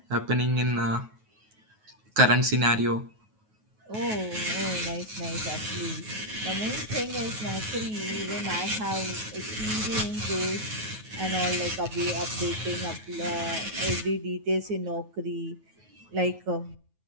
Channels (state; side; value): late; left; 9.3 ms